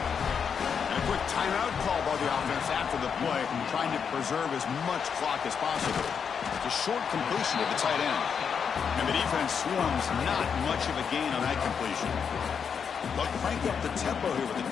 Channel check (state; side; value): quieter; right; 6.8 dB